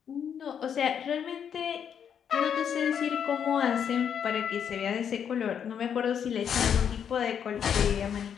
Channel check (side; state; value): right; quieter; 8.1 dB